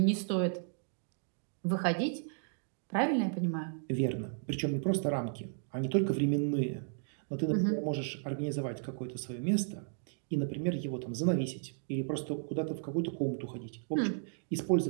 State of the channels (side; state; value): left; silent; digital silence